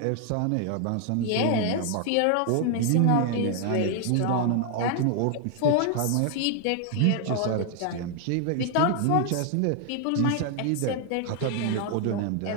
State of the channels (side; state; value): both; different; correlation 0.00